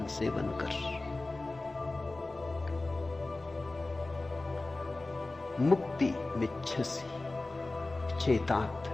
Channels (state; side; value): quieter; right; 3.1 dB